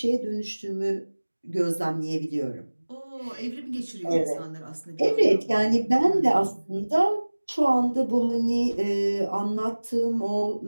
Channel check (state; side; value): inverted; both; correlation -1.00